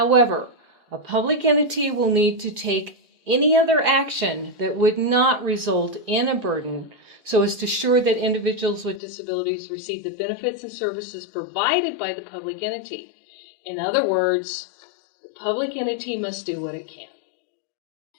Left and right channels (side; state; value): right; drops out; at 9.0 s